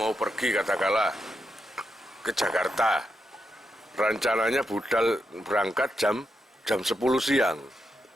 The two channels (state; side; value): normal; both; correlation 0.85